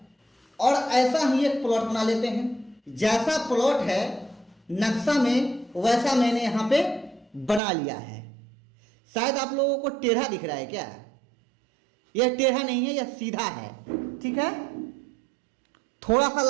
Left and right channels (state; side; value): drops out; left; at 7.6 s